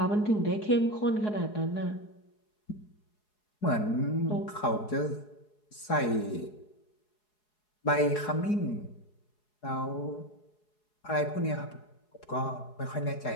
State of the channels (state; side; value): late; right; 4.8 ms